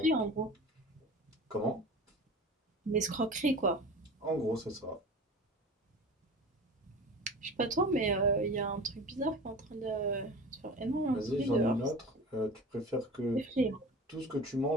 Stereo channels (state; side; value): normal; both; correlation 0.36